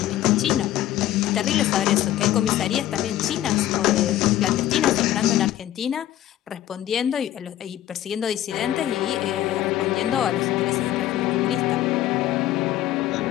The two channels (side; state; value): right; quieter; 13.1 dB